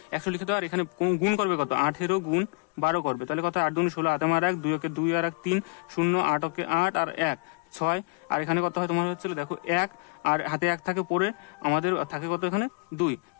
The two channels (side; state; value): right; quieter; 31.6 dB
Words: 100 লিখে দেবে। আর এখানে গুণ করবে কত, 18 গুণ 12 করবে। তাহলে কত, 8 দুগুণে 16, 8 আর 1 2 2 আর 1 3 0 8 8 আর 1 6। আর এখানে কত হয় তোমার হচ্ছিল দেখো 1 আর হাতে 1 থাকে পরে আমাদের থাকে কত এখানে 2,